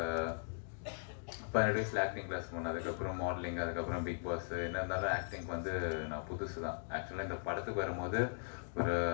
12 வயசில் ஆக்டிங் கிளாஸ் போனேன், அதுக்கப்புறம் மாடலிங், அதுக்கப்புறம் பிக் பாஸ். என்ன இருந்தாலும் ஆக்டிங் வந்து நான் புதுசு தான். ஆக்சுவலாக இந்த படத்துக்கு வரும்போது ஒரு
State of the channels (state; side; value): silent; right; digital silence